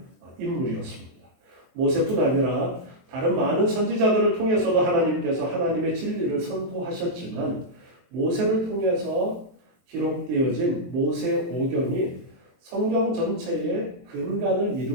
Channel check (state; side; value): late; left; 23 ms